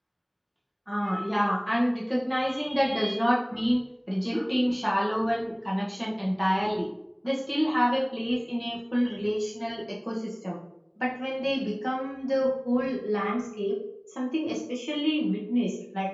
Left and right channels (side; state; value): both; identical; correlation 1.00